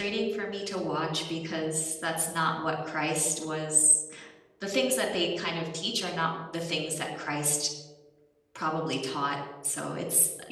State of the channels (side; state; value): both; identical; correlation 1.00